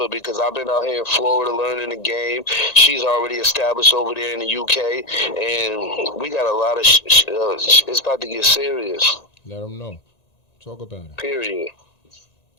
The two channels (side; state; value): right; late; 1.9 ms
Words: because I've been out here in Florida learning the game. She's already established over there in the UK, and we got a lot of. It's about to get serious. Let them know. Talk about it. Period.